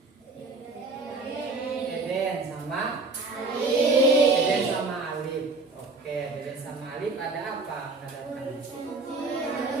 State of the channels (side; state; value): left; quieter; 3.5 dB